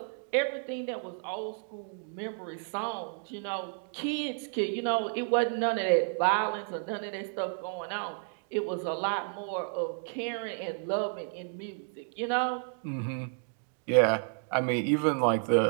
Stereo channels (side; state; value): left; silent; 57 dB below the other